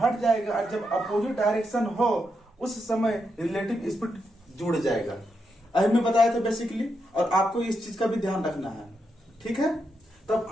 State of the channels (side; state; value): both; normal; correlation 0.83